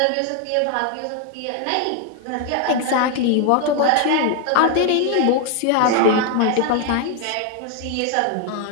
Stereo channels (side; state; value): both; different; correlation 0.01